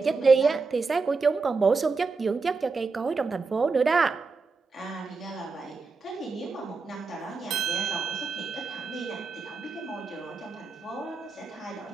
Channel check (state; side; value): quieter; left; 4.3 dB